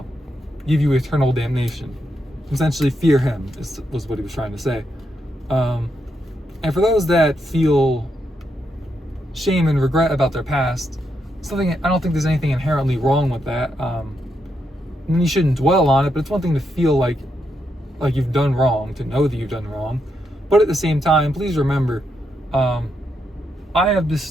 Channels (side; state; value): both; normal; correlation 0.81